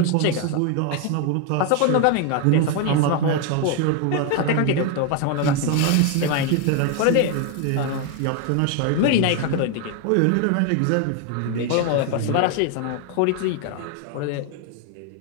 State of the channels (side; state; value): both; different; correlation 0.01